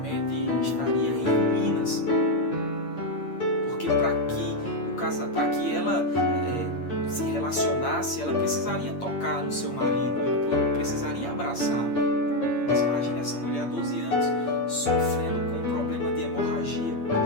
estaria em ruínas. Porque para que ela se relacionasse, ela precisaria tocar no seu marido, ela precisaria abraçar. Mas imagine essa mulher há 12 anos sofrendo com um problema de hemorragia,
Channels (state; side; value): late; right; 8.7 ms